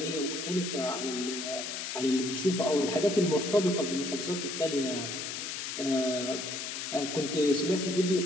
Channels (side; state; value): left; noise; hiss, 5 dB below the sound